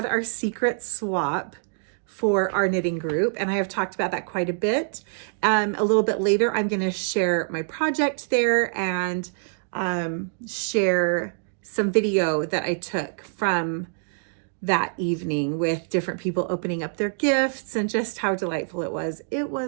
our secret swap for our knitting group, and I have talked about that quite a bit. A little bit later, I'm going to share my project there and share some video that I took from that evening with different people opening up their gifts and just how delightful it was. It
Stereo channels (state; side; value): silent; left; digital silence